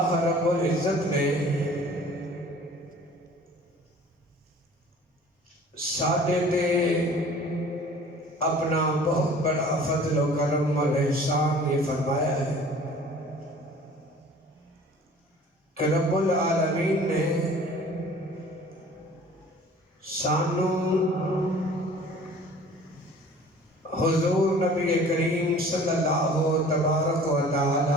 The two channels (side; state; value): both; normal; correlation 0.48